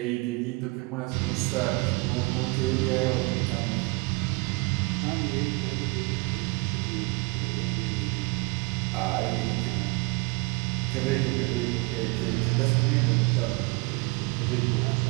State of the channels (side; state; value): left; quieter; 27.6 dB